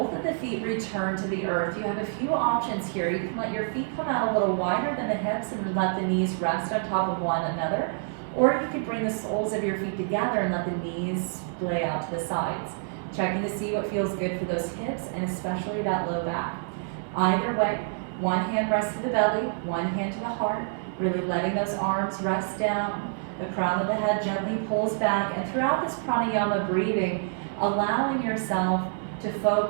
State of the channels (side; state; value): left; silent; digital silence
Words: of the feet return to the earth. You have a few options here. You can let your feet come out a little wider than the hips and let the knees rest on top of one another, or you could bring the soles of your feet together and let the knees splay out to the sides. Checking to see what feels good for those hips and especially that low back. Either way, one hand rests to the belly, one hand to the heart, really letting those arms rest down. The crown of the head gently pulls back, and throughout this pranayama breathing, allowing yourself to